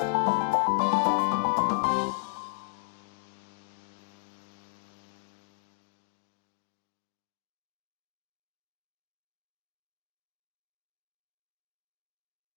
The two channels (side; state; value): right; silent; digital silence